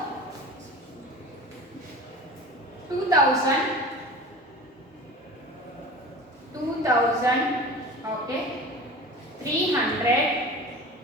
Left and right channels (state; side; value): normal; both; correlation 0.36